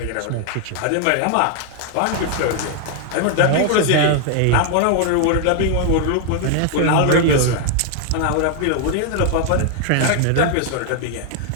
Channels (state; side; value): different; both; correlation 0.00